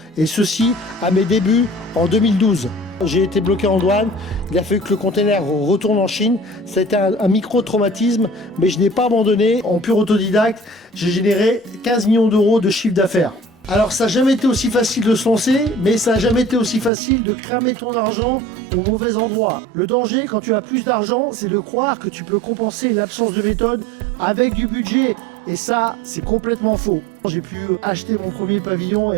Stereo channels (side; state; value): left; drops out; at 16.9 s